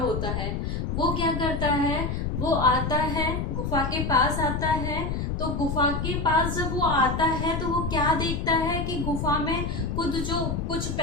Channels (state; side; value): noise; left; rumble, 2 dB below the sound